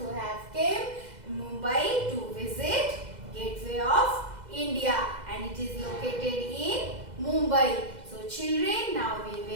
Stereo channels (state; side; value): late; left; 2.0 ms